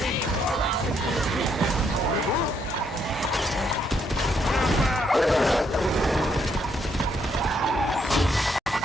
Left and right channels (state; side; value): normal; both; correlation 0.73